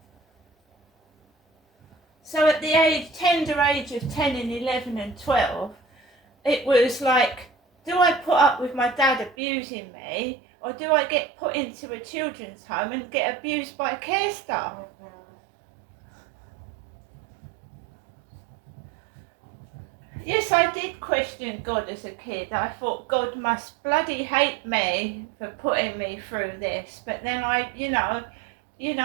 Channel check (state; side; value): drops out; left; at 9.3 s